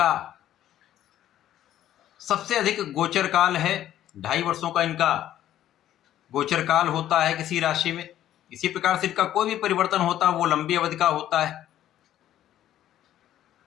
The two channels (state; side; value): quieter; right; 12.2 dB